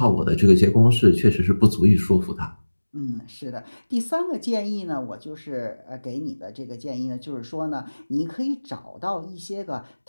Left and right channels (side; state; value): both; inverted; correlation -1.00